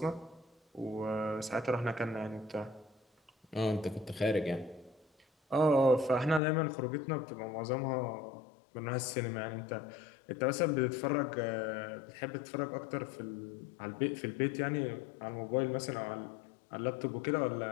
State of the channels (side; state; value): right; drops out; at 6.4 s